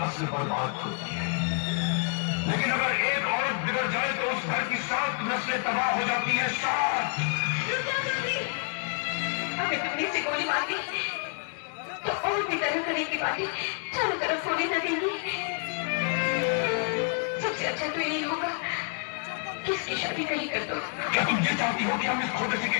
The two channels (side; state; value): right; quieter; 40.0 dB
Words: बर्बाद होती है, लेकिन अगर एक औरत बिगड़ जाए तो उस घर की 7 नस्लें तबाह हो जाती है। 7। हमें तुमने से गोली मार दी तो और भी तरह तरह की बातें चारों तरफ होने लगेंगी। सबसे अच्छा तो यही होगा कि इसकी शादी कहीं कर दो। क्या तुम ये चाहती हो कि हम इस छोटे